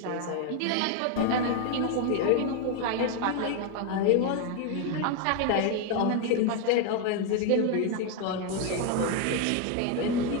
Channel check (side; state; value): both; different; correlation 0.01